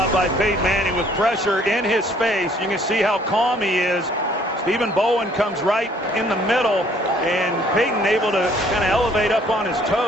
by Peyton Manning with pressure in his face. You can see how calm he is. Stephen Bowen comes right in the middle, and Peyton able to kind of elevate up on his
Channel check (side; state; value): both; normal; correlation 0.60